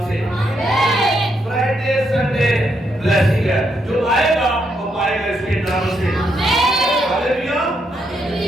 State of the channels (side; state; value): both; normal; correlation 0.78